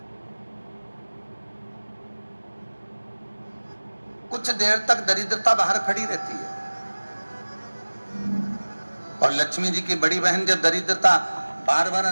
कुछ देर तक दरिद्रता बाहर खड़ी रहती है और लक्ष्मी जी की बड़ी बहन जब दरिद्रता बार बार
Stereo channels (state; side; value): inverted; both; correlation -1.00